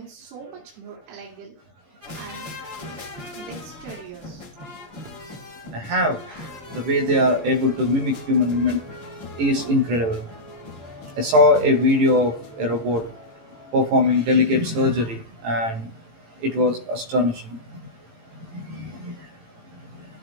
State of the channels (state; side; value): late; left; 18 ms